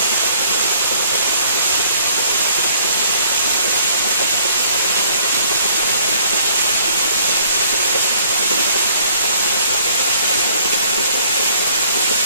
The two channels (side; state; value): both; inverted; correlation -0.60